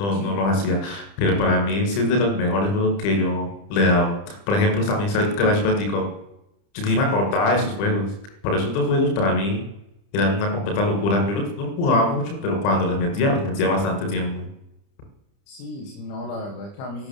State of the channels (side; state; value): right; late; 30 ms